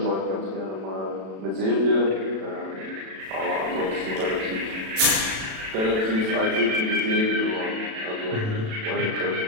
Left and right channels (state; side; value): late; left; 37 ms